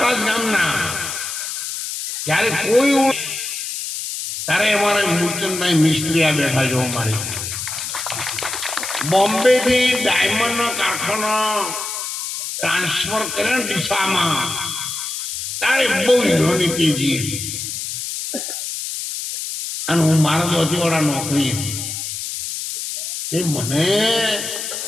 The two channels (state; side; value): noise; left; hiss, 5 dB below the sound